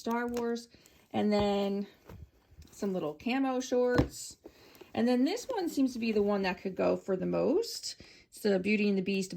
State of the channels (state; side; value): identical; both; correlation 1.00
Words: Wars. And then some little camo shorts. And then this one seems to be the one that could go for the most. It's the Beauty and the Beast